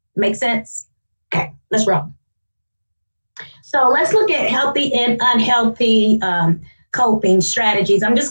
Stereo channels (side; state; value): both; inverted; correlation -1.00